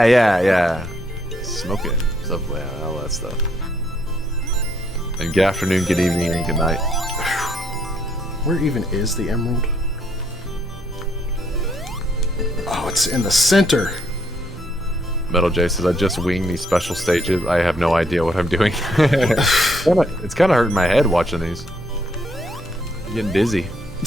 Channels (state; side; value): normal; both; correlation 0.71